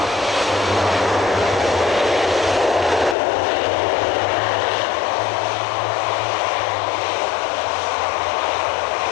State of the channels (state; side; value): drops out; right; at 3.2 s